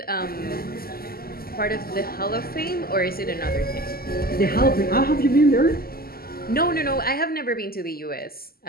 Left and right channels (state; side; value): late; right; 0.44 ms